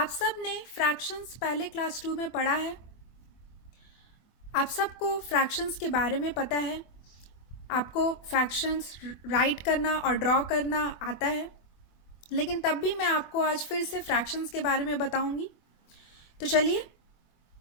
सब ने fractions पहले class 2 में पढ़ा है. आप सबको fractions के बारे में पता है. आपको fractions write करना और draw करना आता है. लेकिन तब भी मैं आपको आज फिर से fractions के बारे में बताऊंगी. तो चलिए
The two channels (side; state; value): right; late; 24 ms